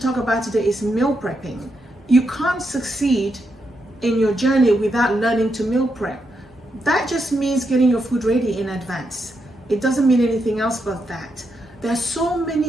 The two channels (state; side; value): normal; both; correlation 0.82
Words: about today is meal prepping. You can't succeed in your journey without learning to meal prep. That just means getting your food ready in advance. It doesn't mean anything else but that. There are so